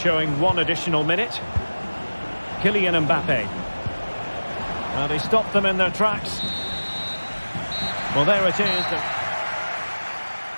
1 additional minute. Kylian Mbappe. Well, they stopped them in their tracks. Well, there it is.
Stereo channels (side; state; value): both; inverted; correlation -1.00